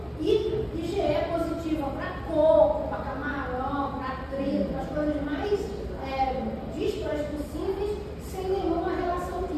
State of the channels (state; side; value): identical; both; correlation 1.00